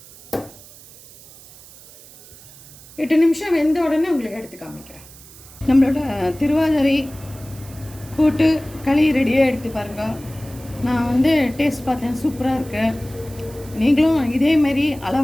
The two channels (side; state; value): right; noise; hiss, 21 dB below the sound